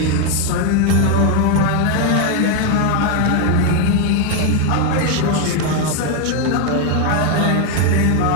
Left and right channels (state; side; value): different; both; correlation 0.01